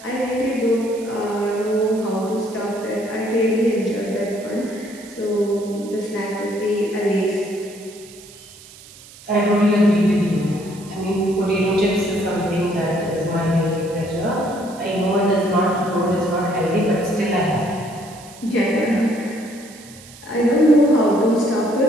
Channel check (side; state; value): right; noise; hiss, 20 dB below the sound